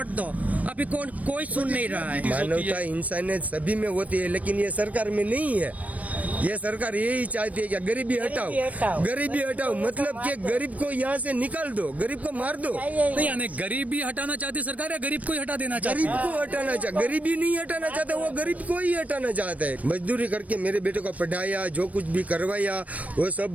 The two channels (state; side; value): late; left; 0.069 ms